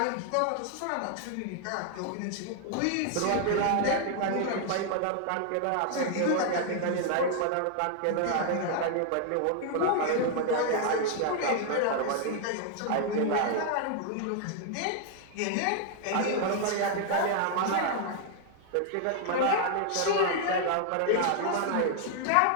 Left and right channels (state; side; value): different; both; correlation 0.00